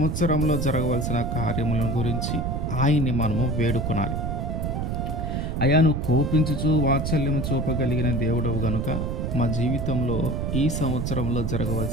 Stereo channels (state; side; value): noise; right; rumble, 1 dB below the sound